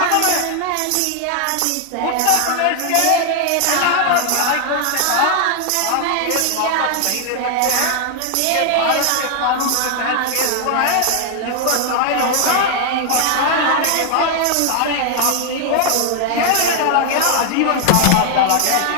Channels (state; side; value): different; both; correlation 0.00